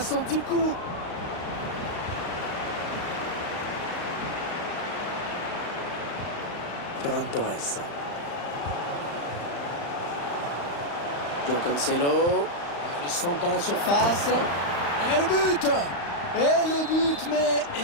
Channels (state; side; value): late; right; 35 ms